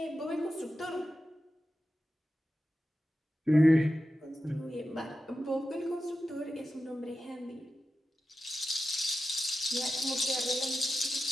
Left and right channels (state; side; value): normal; both; correlation 0.91